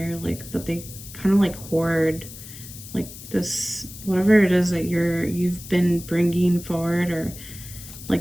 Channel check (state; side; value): noise; left; hiss, 14 dB below the sound